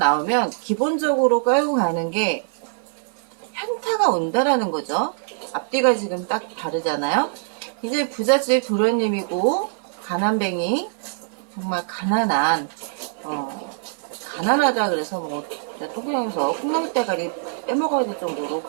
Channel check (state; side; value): silent; left; 57 dB below the other